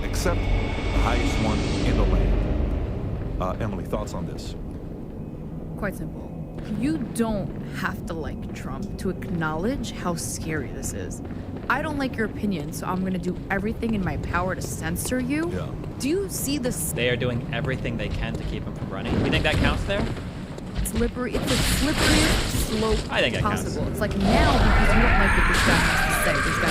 except the highest one in the land. Emily, thoughts on this? Quite simple. You don't have to like Trump to acknowledge how scary this is. I don't like your opinion, so I'm gonna do everything in my power to censor you. Yeah. Do you see this? They are doing everything they can to keep him from running. You think that counts there? Slippery. It's the slipperiest slope I think that counts. possible. It's like now because you don't like what this guy has to say. This guy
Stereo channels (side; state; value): both; identical; correlation 1.00